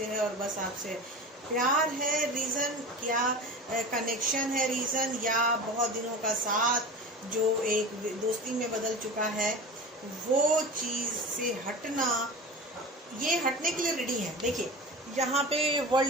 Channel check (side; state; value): both; normal; correlation 0.31